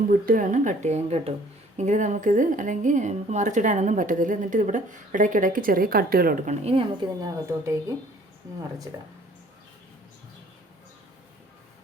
ഇട്ട് വേണം കട്ട് ചെയ്യാൻ കേട്ടോ. എങ്കിൽ നമുക്കിത്, അല്ലെങ്കിൽ നമുക്ക് മറിച്ചിടാനൊന്നും പറ്റത്തില്ല. എന്നിട്ട് ഇവിടെ ഇടയ്ക്കിടയ്ക്ക് ചെറിയ കട്ടുകൾ കൊടുക്കണം. ഇനി നമുക്കിതിനകത്തോട്ടേക്ക് മറിച്ചിടാം.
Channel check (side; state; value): both; normal; correlation 0.55